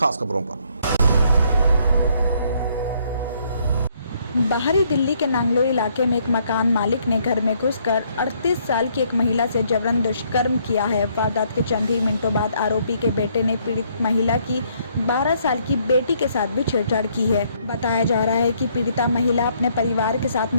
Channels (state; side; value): inverted; both; correlation -0.68